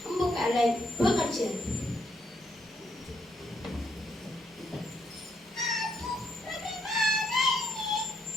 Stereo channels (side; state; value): both; normal; correlation 0.75